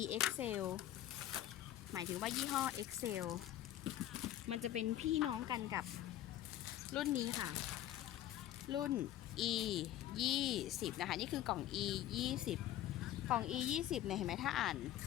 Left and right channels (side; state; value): right; quieter; 12.9 dB